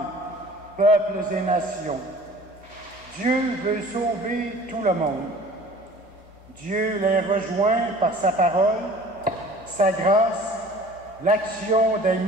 peuples et nations. Dieu veut sauver tout le monde. Dieu les rejoint par sa parole, sa grâce, l'action des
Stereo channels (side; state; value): both; normal; correlation 0.47